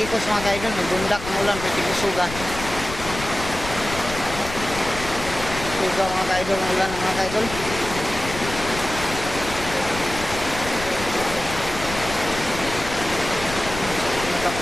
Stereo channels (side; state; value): left; noise; rumble, 10 dB below the sound